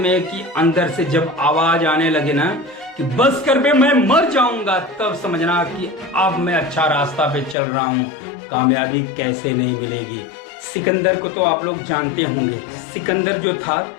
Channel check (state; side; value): drops out; right; at 7.6 s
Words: कि अंदर से जब आवाज़ आने लगे ना कि बस कर बे मैं मर जाऊंगा, तब समझना कि अब मैं अच्छा रास्ता पे चल रहा हूँ, कामयाबी कैसे नहीं मिलेगी। सिकंदर को तो आप लोग जानते होंगे। सिकंदर जो था